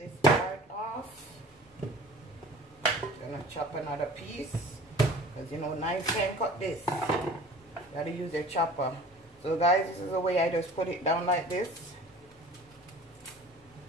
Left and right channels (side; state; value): both; normal; correlation 0.44